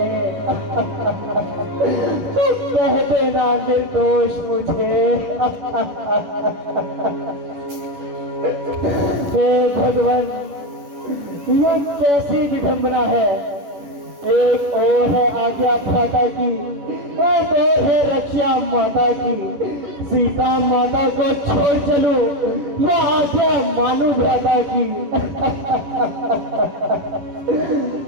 तो कह देना निर्दोष मुझे। हे भगवान, ये कैसी विडंबना है। एक और है आज्ञा भ्राता की, एक और है रक्षा माता की। सीता माता को छोड़ चलूं या आज्ञा मानू भ्राता की।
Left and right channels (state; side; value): late; left; 11 ms